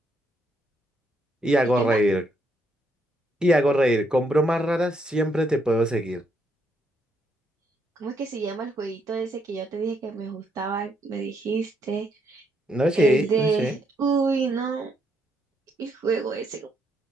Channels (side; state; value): both; normal; correlation 0.75